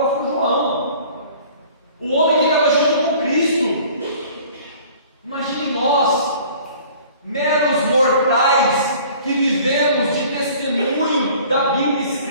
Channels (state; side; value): inverted; both; correlation -0.49